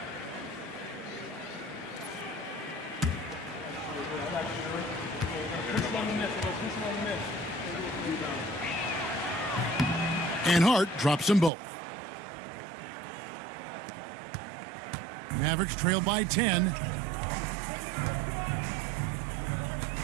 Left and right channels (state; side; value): drops out; left; at 11.5 s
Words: And Hart drops them both. Mavericks trail by 10.